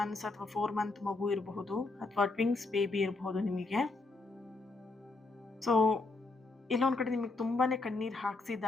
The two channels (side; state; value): right; quieter; 3.5 dB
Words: ಅಥವಾ 4 month ಮಗು ಇರಬಹುದು, ಅಥವಾ ಟ್ವಿನ್ಸ್ ಬೇಬಿ ಇರಬಹುದು ನಿಮಗೆ. ಸೊ ಇಲ್ಲೊಂದು ಕಡೆ ನಿಮಗೆ ತುಂಬಾ ಕಣ್ಣೀರು